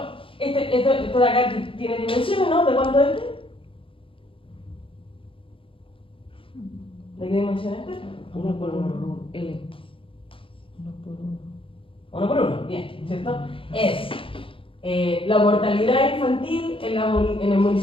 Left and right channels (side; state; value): right; late; 0.26 ms